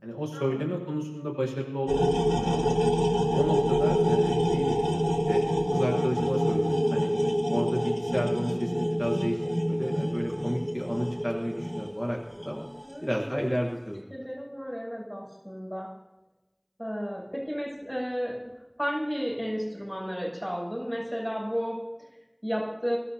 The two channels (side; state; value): both; identical; correlation 1.00